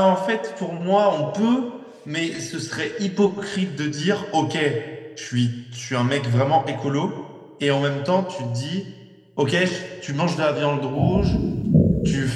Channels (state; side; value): identical; both; correlation 1.00